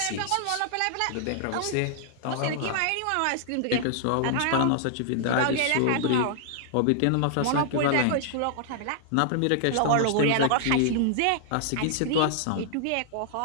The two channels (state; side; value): different; both; correlation -0.01